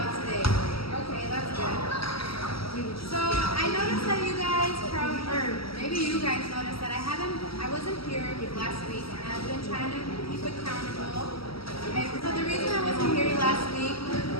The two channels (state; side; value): late; right; 0.75 ms